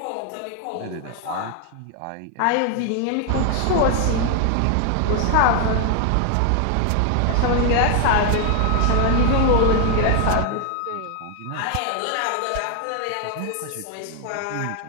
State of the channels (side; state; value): both; different; correlation 0.00